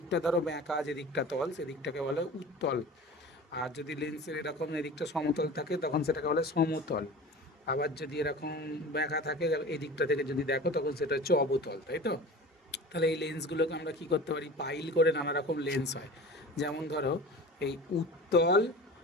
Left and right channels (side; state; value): both; normal; correlation 0.37